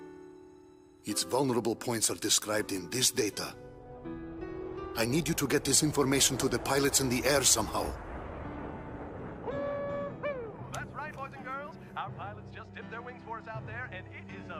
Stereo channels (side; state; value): both; identical; correlation 1.00